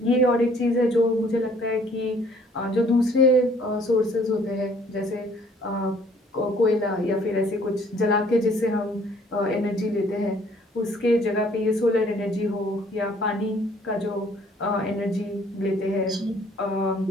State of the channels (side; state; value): both; normal; correlation 0.59